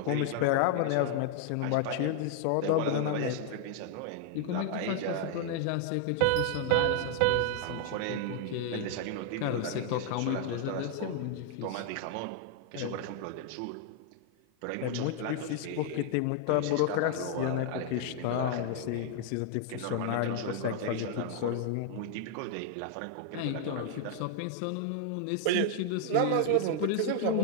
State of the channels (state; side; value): different; both; correlation 0.00